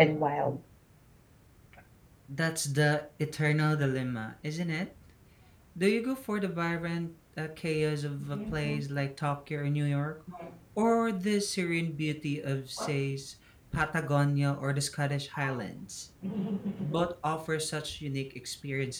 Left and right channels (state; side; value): identical; both; correlation 1.00